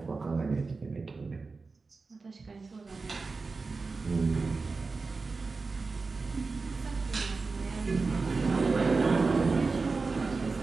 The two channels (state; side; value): quieter; left; 4.1 dB